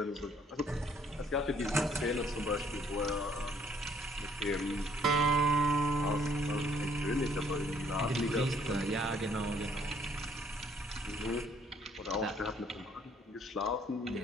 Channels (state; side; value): normal; both; correlation 0.64